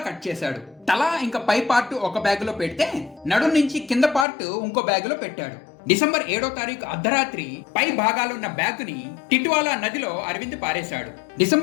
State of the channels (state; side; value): drops out; right; at 4.2 s